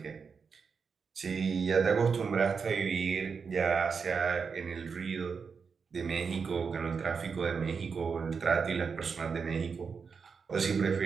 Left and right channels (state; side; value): quieter; left; 5.6 dB